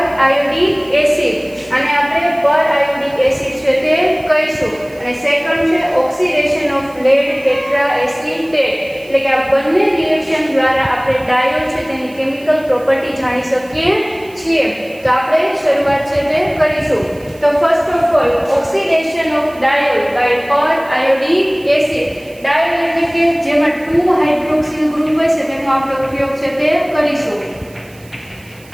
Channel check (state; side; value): noise; right; hiss, 26 dB below the sound